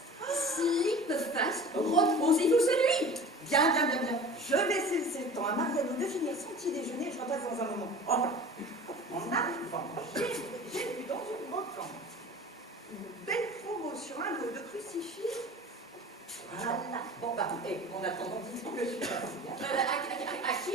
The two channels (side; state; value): both; normal; correlation 0.40